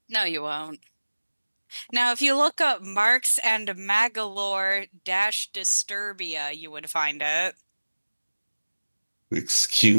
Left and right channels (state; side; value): inverted; both; correlation -1.00